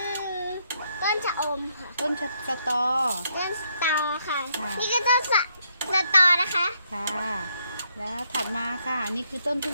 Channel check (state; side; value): inverted; both; correlation -0.74